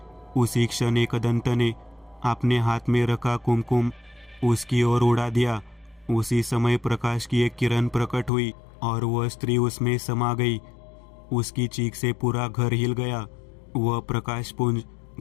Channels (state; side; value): drops out; right; at 8.3 s